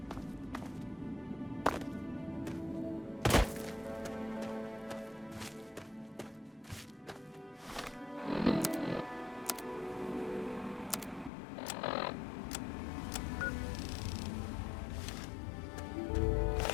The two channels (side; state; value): right; drops out; at 11.3 s